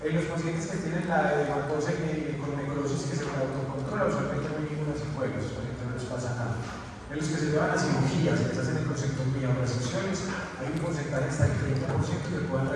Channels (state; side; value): identical; both; correlation 1.00